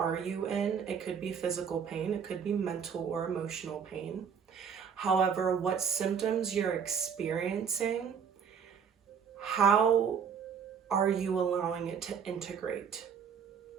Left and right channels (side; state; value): left; quieter; 7.0 dB